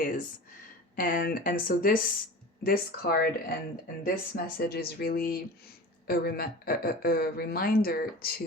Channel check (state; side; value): normal; both; correlation 0.35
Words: And so this card and this message is really a reminder